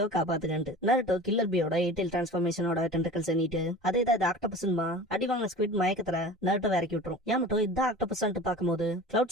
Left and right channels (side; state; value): both; normal; correlation 0.38